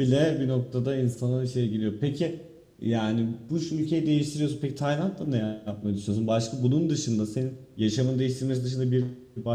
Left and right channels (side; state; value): both; identical; correlation 1.00